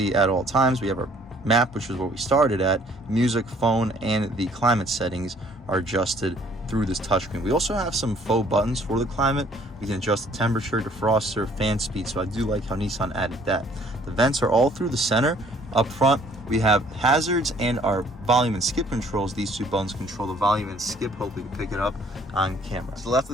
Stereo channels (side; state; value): both; normal; correlation 0.59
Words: at all times. We have our map, which is where we started at. Music, phone, and the climate settings are adjusted through this touchscreen. We also have some faux buttons for the climate. We can adjust the temperature, defroster, fan speed. So I do like how Nissan added that. The vents are all through the center. Up front, we have hazards and our volume and skip controls. These two buttons control the volume and skip. Hopefully you can pick it up on camera. To the left